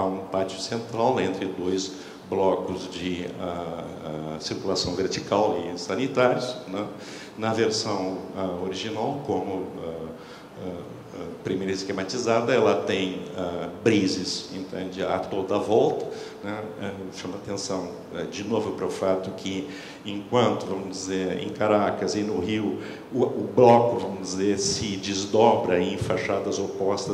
pátio central entre 2 blocos de circulação vertical e sanitários, né? Na versão original, como primeira esquematizada, ela tem brises, entende, a toda a volta, né? Chama atenção de novo para o fato que, enquanto, vamos dizer, em Caracas e no Rio, o bloco, vamos dizer, se desdobra em fachadas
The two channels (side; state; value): both; identical; correlation 1.00